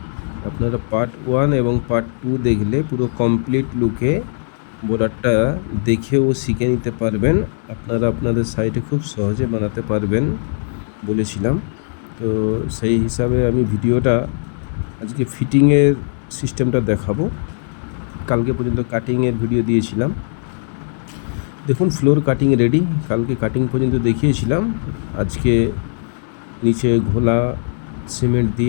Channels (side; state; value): right; silent; digital silence